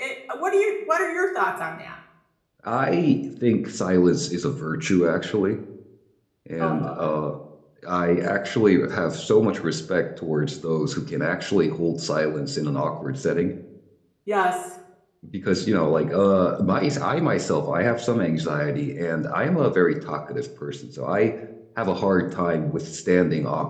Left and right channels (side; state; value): both; identical; correlation 1.00